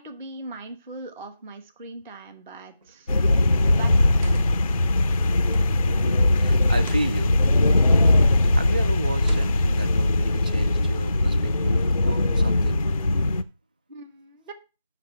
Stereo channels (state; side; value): inverted; both; correlation -0.91